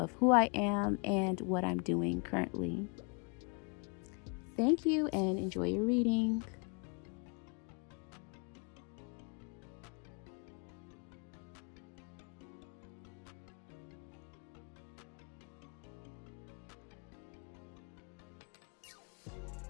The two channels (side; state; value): right; quieter; 35.2 dB